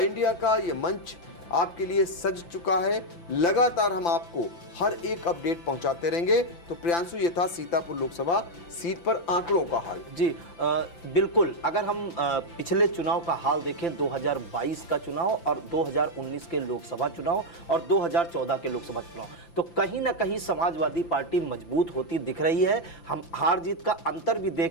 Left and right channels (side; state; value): right; late; 5.9 ms